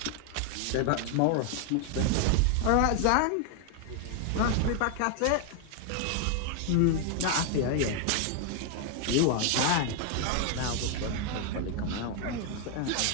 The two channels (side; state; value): both; different; correlation 0.00